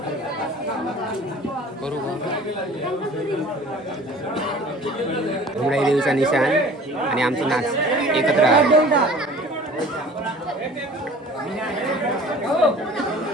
करू घुमडाई देवीचा निशाण आणि आमचं नाच एकत्र आहे.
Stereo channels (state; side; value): normal; both; correlation 0.46